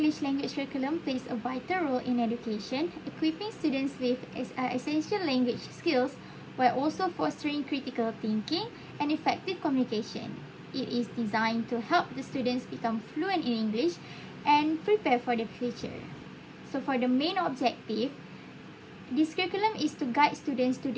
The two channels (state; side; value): identical; both; correlation 1.00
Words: language curriculum plays a vital role in education, equipping students with essential language skills while also fostering critical thinking and effective communication. It is designed to help the students become fluent in English and prepare for the future. So for the main objective, this curriculum is to guide students to